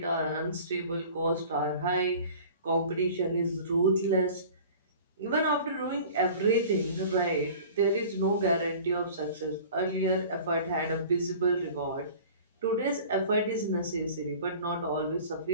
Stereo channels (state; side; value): inverted; both; correlation -0.43